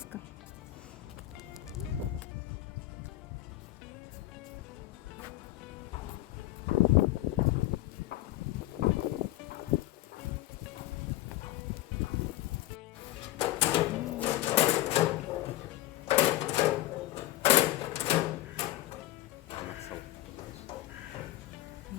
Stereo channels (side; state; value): right; quieter; 16.2 dB